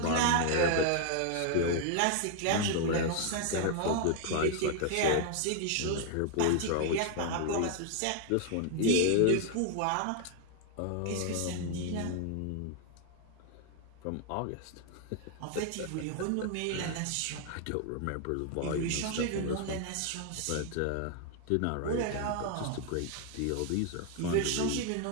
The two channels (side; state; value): both; different; correlation 0.00